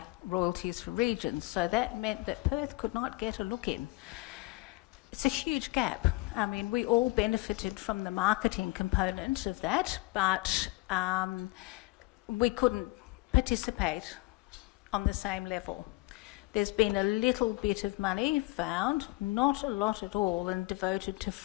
royalties for regions. So that meant that Perth could not get a look in. It's a huge gap. I mean, we all benefited from the marketing component of that, but we couldn't participate on the same level. There's been a little bit of money found, not a lot at all, and devoted to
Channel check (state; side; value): quieter; right; 22.4 dB